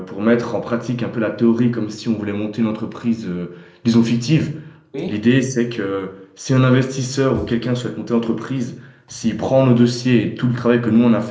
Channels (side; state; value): both; identical; correlation 1.00